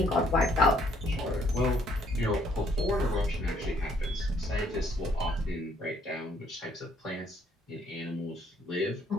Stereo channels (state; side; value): normal; both; correlation 0.66